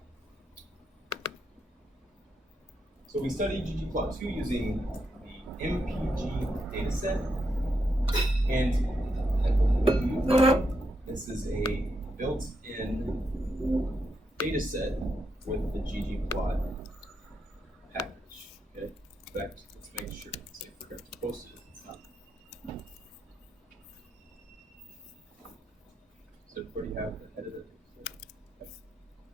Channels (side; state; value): both; normal; correlation 0.82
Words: So we study ggplot2 using the MPG dataset, and I believe this is a built-in dataset with the ggplot package. Okay. In fact, let's make sure. Say I forgot to post it. It's not. Does everybody have the head of it?